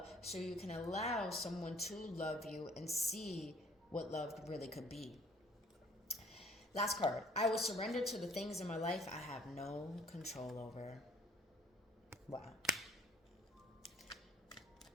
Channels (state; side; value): normal; both; correlation 0.58